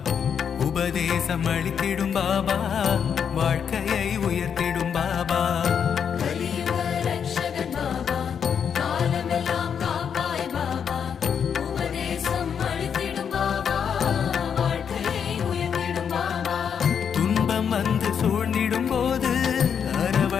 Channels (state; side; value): quieter; right; 7.5 dB